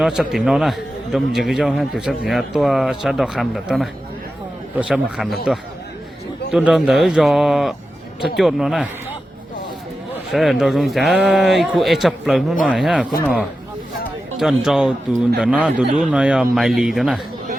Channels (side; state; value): both; normal; correlation 0.92